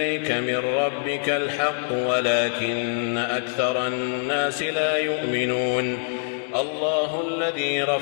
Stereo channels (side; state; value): right; silent; digital silence